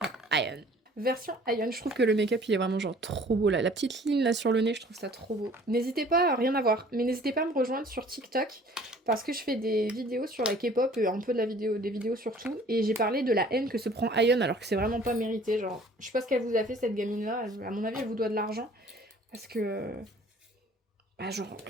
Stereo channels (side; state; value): both; normal; correlation 0.52